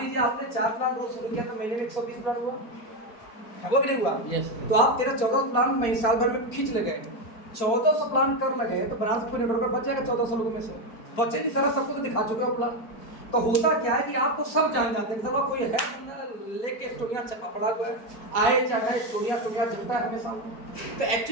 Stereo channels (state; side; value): late; right; 4.5 ms